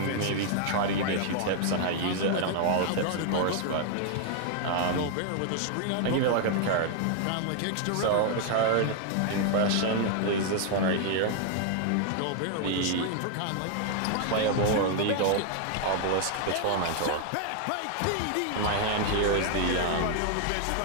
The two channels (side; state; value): both; different; correlation 0.00